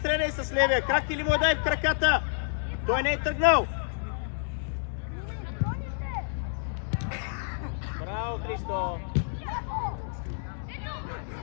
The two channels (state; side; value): silent; right; digital silence